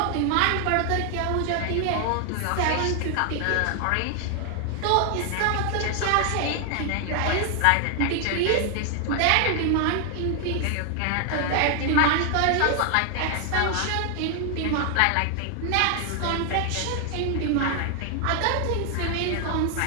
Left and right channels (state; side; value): different; both; correlation 0.00